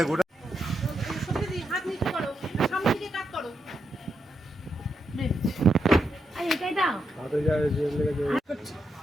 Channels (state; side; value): normal; both; correlation 0.83